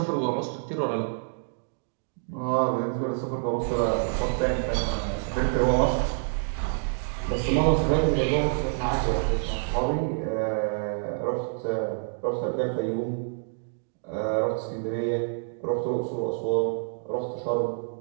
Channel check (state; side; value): silent; left; digital silence